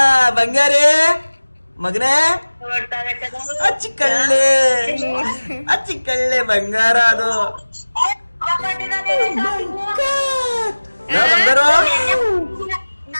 ಬಂಗಾರಿ ಮಗನೇ, ಅಚ್ಚಿಕಳ್ಳೆ ಬಂಗಾರ ಅದು. ಬಂಗಾರ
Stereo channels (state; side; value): inverted; both; correlation -1.00